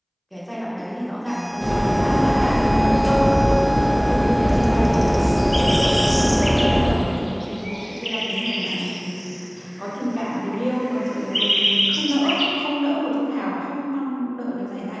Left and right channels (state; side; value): identical; both; correlation 1.00